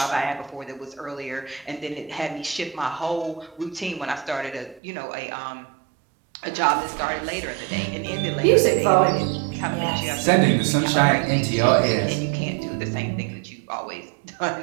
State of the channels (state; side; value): drops out; left; at 4.8 s